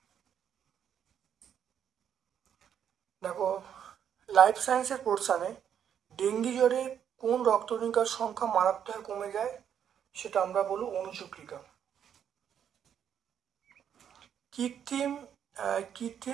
দেখো লাইফ সায়েন্সের পোর্শনে ডেঙ্গি জ্বরে কোন রক্তকণিকার সংখ্যা মারাত্মক কমে যায়, সেটা আমরা বলবো অণুচক্রিকা।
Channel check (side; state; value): left; quieter; 8.8 dB